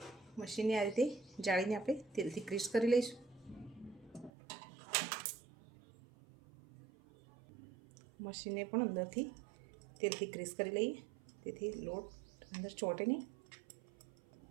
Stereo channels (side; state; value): left; drops out; at 4.3 s